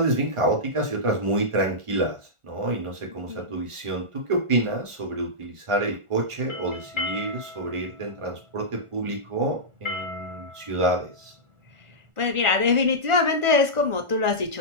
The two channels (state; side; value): late; left; 1.4 ms